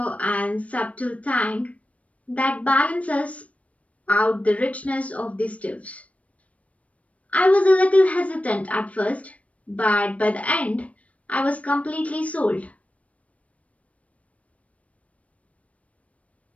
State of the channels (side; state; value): right; late; 0.065 ms